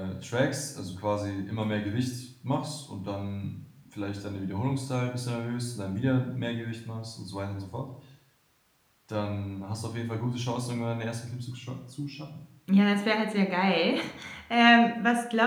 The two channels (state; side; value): identical; both; correlation 1.00